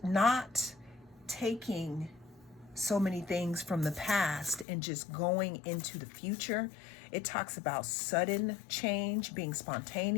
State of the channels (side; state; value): right; drops out; at 4.7 s